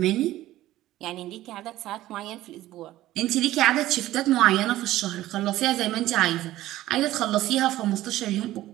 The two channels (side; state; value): left; quieter; 15.2 dB